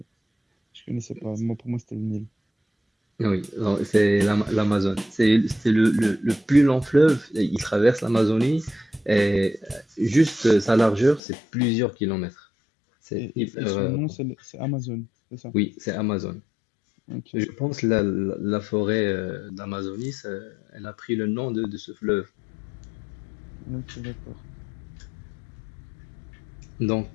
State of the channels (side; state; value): right; drops out; at 11.2 s